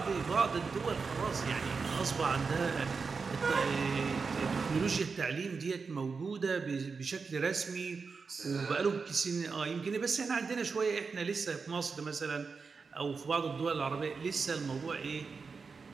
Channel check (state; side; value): quieter; left; 4.9 dB